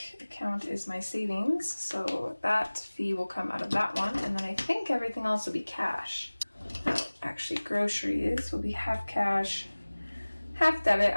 account is my savings, so that fee will come out of that one. And then I think everything else will be cash. Actually, groceries will be half cash, half debit.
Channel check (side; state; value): both; inverted; correlation -1.00